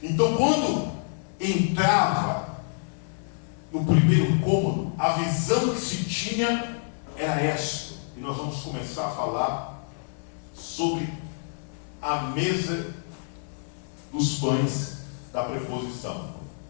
Então, quando entrava no primeiro cômodo, a visão que se tinha era esta. E nós vamos começar a falar sobre a mesa dos pães da preposição.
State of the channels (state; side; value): silent; right; digital silence